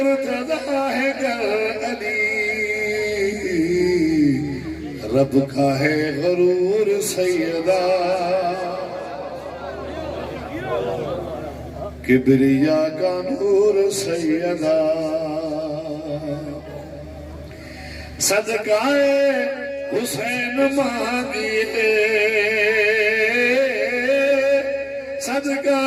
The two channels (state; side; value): identical; both; correlation 1.00